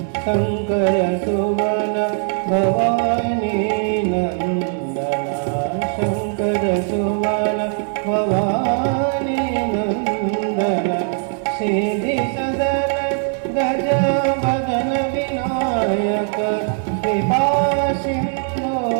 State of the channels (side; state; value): left; silent; 56 dB below the other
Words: शङ्कर सुमन भवानी नन्दन शङ्कर सुमन भवानी नन्दन सिद्धि सदन गज बदन विनायक कृपा सिंधु